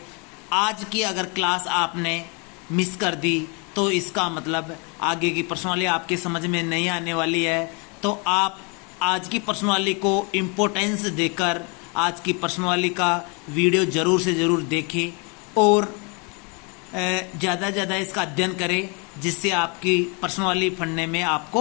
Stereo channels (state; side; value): quieter; right; 32.9 dB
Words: आज की अगर क्लास आपने मिस कर दी तो इसका मतलब आगे की प्रश्नावली आपके समझ में नहीं आने वाली है। तो आप आज की प्रश्नावली को इम्पोर्टेंस देकर आज की प्रश्नावली का वीडियो ज़रूर से ज़रूर देखें और ज़्यादा से ज़्यादा इसका अध्ययन करें, जिससे आपकी प्रश्नावली पढ़ने में